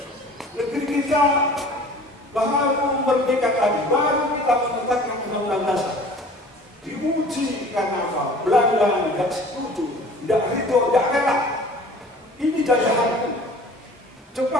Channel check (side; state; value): both; normal; correlation 0.46